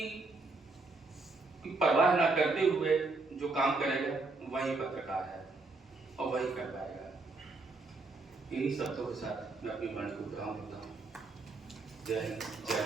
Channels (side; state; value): left; quieter; 3.5 dB